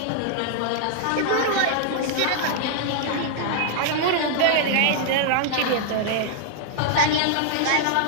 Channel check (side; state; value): both; different; correlation -0.01